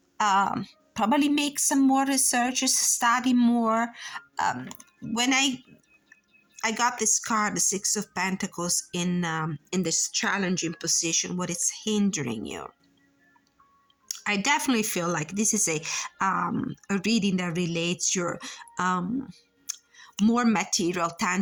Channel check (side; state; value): both; identical; correlation 1.00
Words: probably make some more researches, study more. When I got this card, the Six of Pentacles, in this challenging position, what is hindering you. I definitely feel like this is a reading that relates your more material,